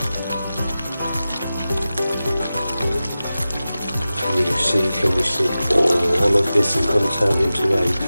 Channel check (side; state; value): both; inverted; correlation -0.95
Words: Can you see, all of this is going to turn into a